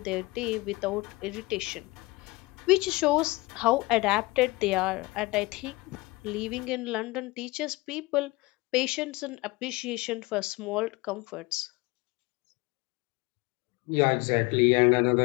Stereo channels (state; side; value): quieter; right; 22.8 dB